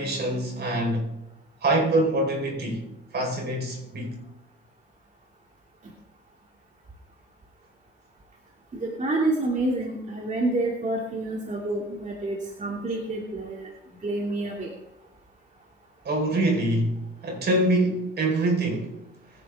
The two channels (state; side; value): normal; both; correlation 0.41